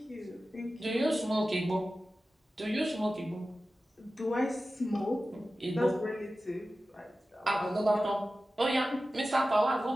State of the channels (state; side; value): normal; both; correlation 0.95